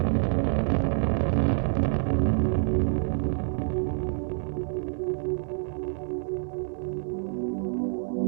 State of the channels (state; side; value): silent; left; 59 dB below the other